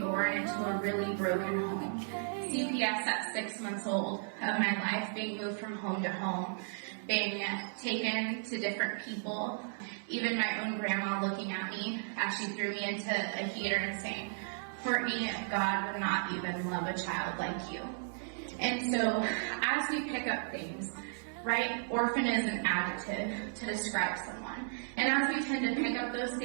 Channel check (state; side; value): silent; left; 55 dB below the other